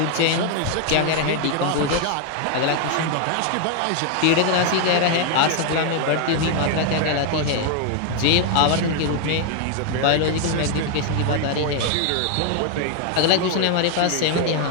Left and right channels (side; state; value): both; different; correlation 0.00